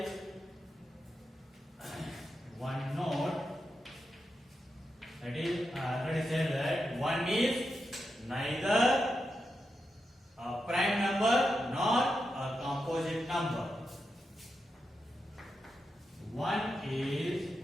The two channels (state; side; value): normal; both; correlation 0.87